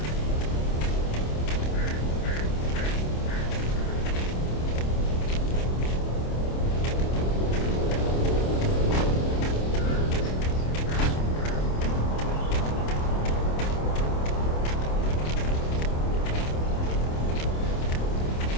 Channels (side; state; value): right; late; 27 ms